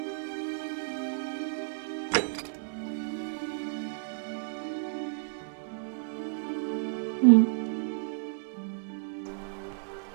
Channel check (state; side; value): silent; left; digital silence